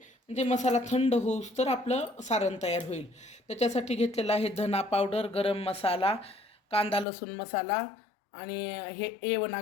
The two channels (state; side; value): drops out; right; at 7.1 s